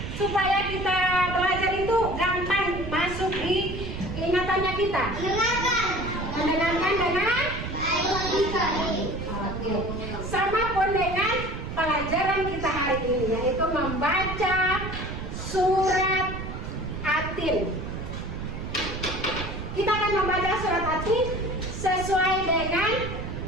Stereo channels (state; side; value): noise; right; rumble, 7 dB below the sound